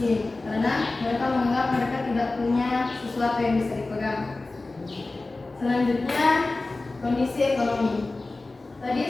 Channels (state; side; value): quieter; right; 3.2 dB